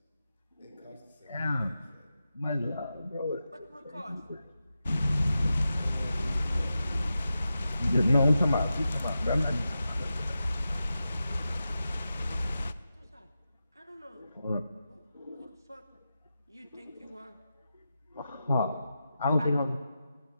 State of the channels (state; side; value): inverted; both; correlation -0.91